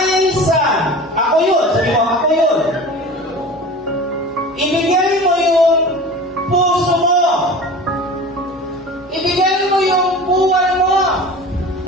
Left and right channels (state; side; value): normal; both; correlation 0.36